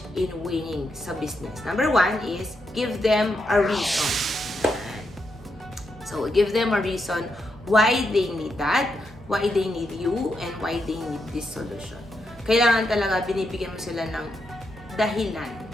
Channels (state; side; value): normal; both; correlation 0.82